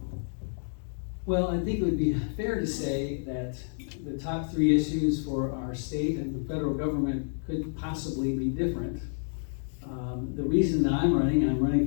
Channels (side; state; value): right; silent; digital silence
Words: Well, I think it would be fair to say that the top 3 issues for our state and the federal government could possibly be different. The reason that I'm running